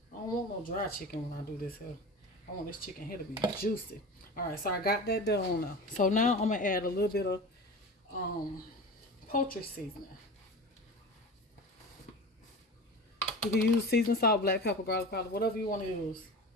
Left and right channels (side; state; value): both; normal; correlation 0.32